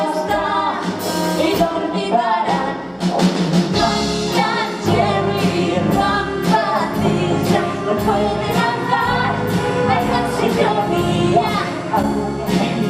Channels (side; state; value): both; identical; correlation 1.00